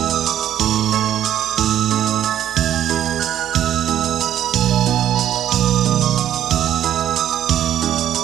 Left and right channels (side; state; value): left; quieter; 11.1 dB